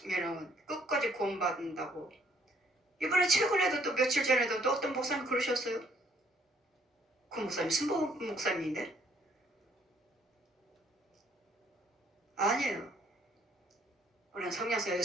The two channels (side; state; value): both; normal; correlation 0.64